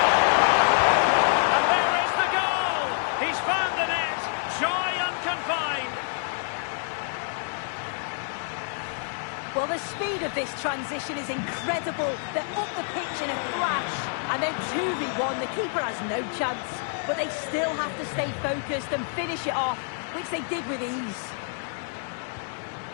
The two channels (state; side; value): silent; right; 60 dB below the other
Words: Well, the speed of this transition is incredible. They're up the pitch in a flash. And then 2v1, the keeper has no chance. But they still have to stay focused and finish it off, which they did with ease.